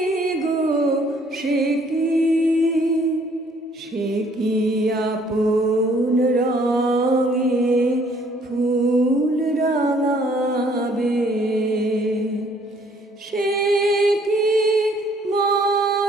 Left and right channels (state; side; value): normal; both; correlation 0.61